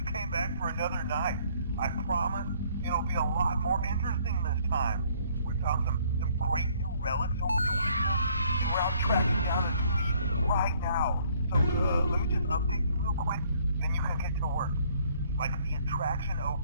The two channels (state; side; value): inverted; both; correlation -0.63